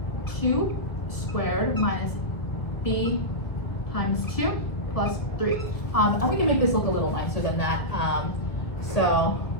2 squared minus b times 2 plus 3. And we can make this look a little nicer than that. So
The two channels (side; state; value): right; late; 1.7 ms